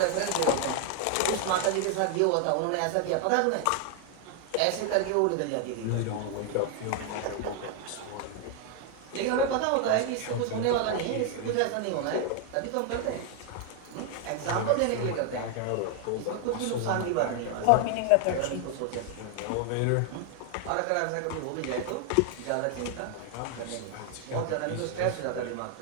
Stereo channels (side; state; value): both; different; correlation 0.00